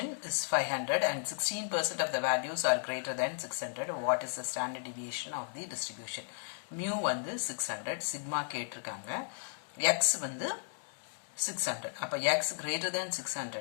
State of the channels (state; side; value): silent; right; digital silence